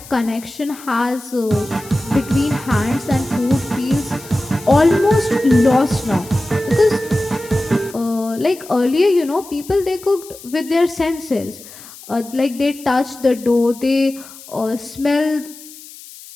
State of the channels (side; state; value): left; noise; hiss, 18 dB below the sound